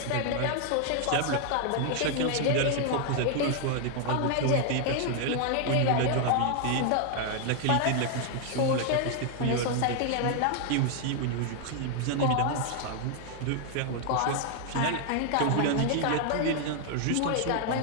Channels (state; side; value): different; both; correlation 0.00